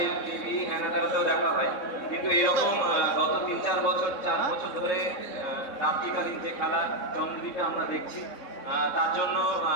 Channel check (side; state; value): right; late; 3.6 ms